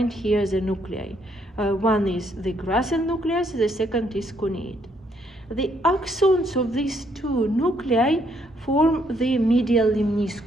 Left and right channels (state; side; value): normal; both; correlation 0.71